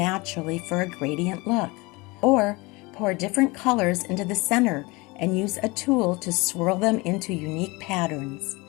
for a gradient look. Or, pour different colors into the center and use a tool to swirl them into unique patterns.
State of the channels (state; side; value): quieter; right; 24.6 dB